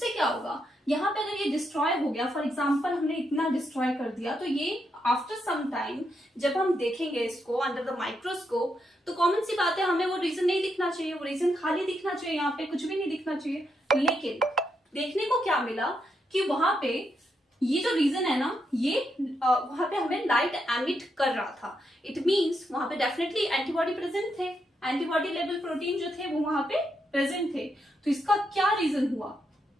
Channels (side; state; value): both; normal; correlation 0.81